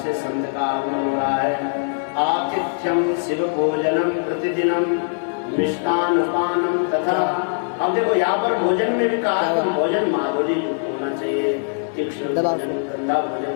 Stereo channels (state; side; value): silent; right; 65 dB below the other